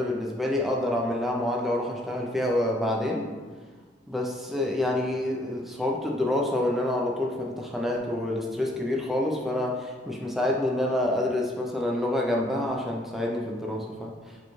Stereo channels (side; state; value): both; normal; correlation 0.65